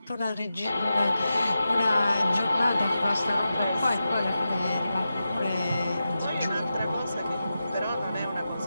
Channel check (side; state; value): both; inverted; correlation -0.90